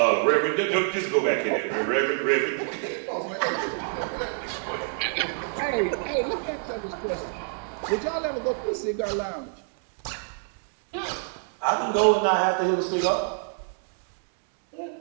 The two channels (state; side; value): silent; left; 60 dB below the other